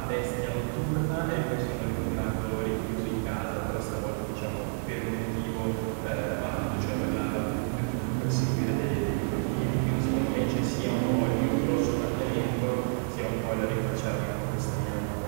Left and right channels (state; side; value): silent; left; 58 dB below the other